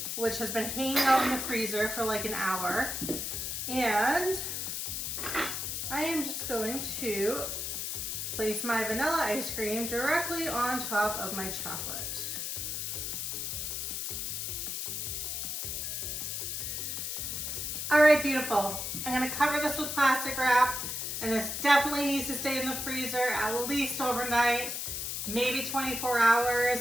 which has been hanging out in the freezer for like an hour. And I am just going to place my vanilla ice cream directly on top of my chocolate. All right, beautiful. I'm gonna cover this with plastic wrap, and this definitely needs to stay in the freezer at least overnight, maybe 24 hours.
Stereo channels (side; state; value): left; noise; hiss, 3 dB below the sound